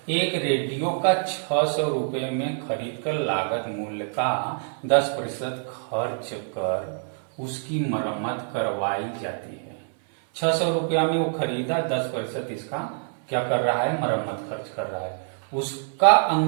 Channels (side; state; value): left; silent; 61 dB below the other